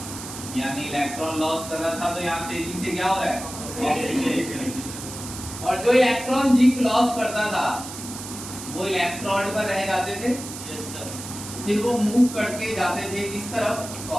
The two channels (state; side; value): noise; right; hiss, 10 dB below the sound